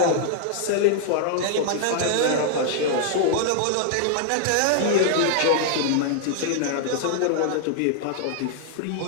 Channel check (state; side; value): different; both; correlation -0.01